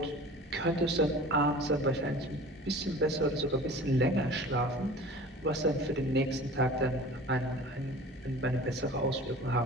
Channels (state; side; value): normal; both; correlation 0.42